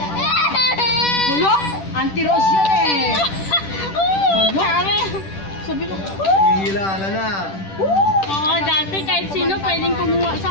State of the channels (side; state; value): right; late; 10 ms